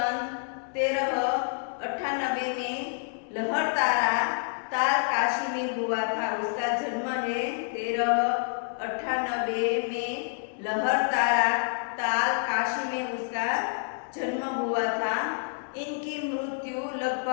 1398 में लहरतारा ताल काशी में हुआ था। उसका जन्म है 1398 में लहरतारा ताल काशी में उसका जन्म हुआ था। इनकी मृत्यु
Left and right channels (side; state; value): right; silent; 59 dB below the other